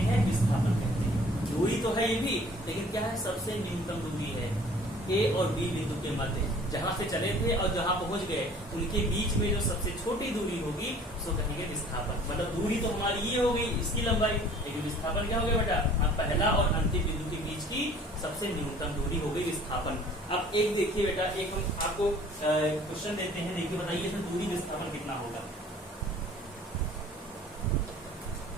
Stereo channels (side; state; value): both; normal; correlation 0.51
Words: हैं, विस्थापन कहते हैं। दूरी तो है ये भी, लेकिन क्या है, सबसे न्यूनतम दूरी है ए और बी बिंदु के मध्य, जहां से चले थे और जहां पहुंच गए उनके बीच में जो सबसे छोटी दूरी होगी उसको कहेंगे विस्थापन। मतलब दूरी तो हमारी ये हो गई, इसकी लंबाई, लेकिन विस्थापन क्या हो गया बेटा, पहला और अंतिम बिंदु के बीच की सबसे न्यूनतम दूरी हो गई विस्थापन। अब एक देखिए बेटा, एक हम आपको क्वेश्चन देते हैं, देखिए बताइए इसमें दूरी विस्थापन कितना होगा।